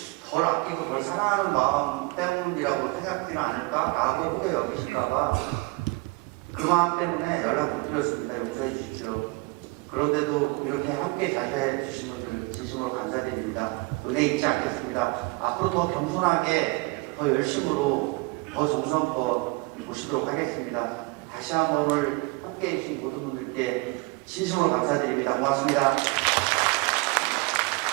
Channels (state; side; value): quieter; left; 25.6 dB